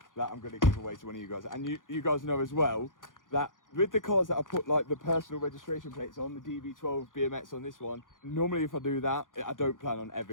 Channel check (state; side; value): late; right; 0.89 ms